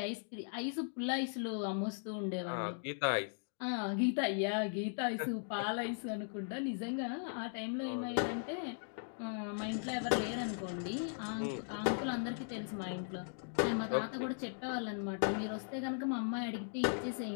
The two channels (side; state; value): right; silent; digital silence